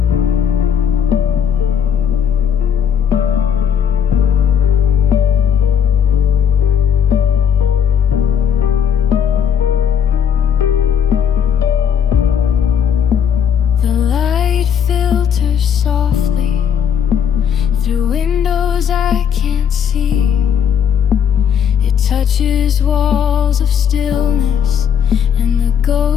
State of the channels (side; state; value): right; quieter; 8.1 dB